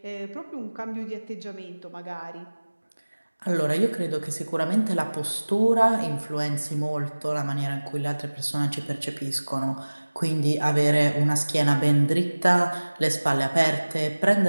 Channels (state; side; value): inverted; both; correlation -1.00